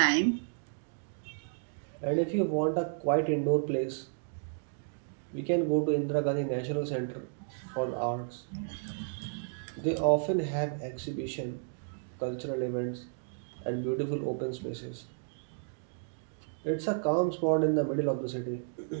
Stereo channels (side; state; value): left; silent; digital silence